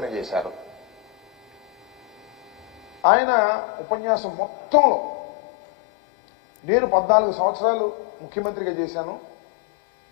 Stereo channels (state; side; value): drops out; right; at 3.0 s